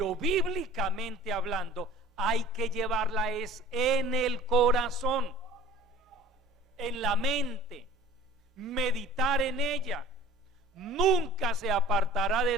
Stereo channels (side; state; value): both; normal; correlation 0.44